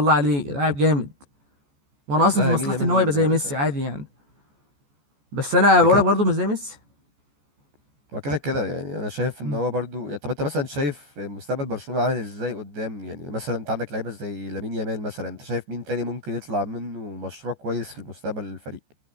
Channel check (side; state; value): left; late; 14 ms